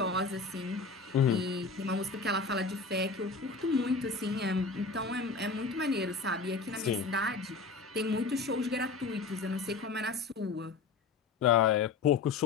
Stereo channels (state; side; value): quieter; right; 4.4 dB